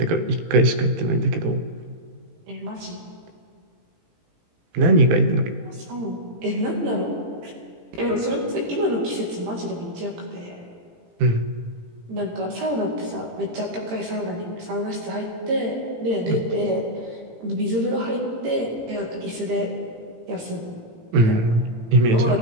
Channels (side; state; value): left; late; 18 ms